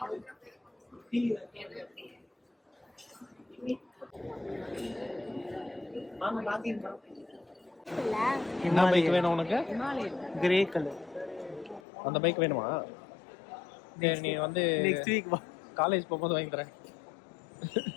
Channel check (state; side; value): drops out; right; at 11.8 s